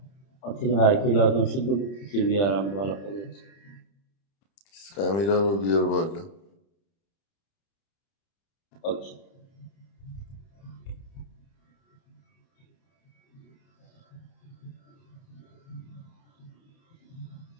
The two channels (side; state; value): right; late; 30 ms